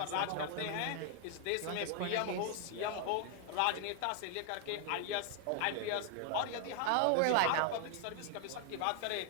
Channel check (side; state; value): both; different; correlation 0.00